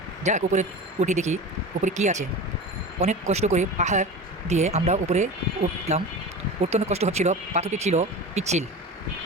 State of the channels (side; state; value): both; normal; correlation 0.31